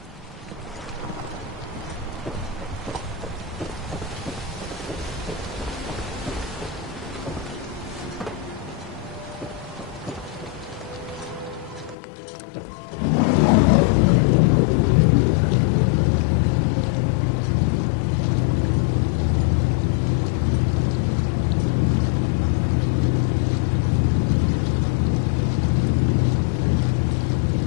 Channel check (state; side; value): drops out; right; at 12.0 s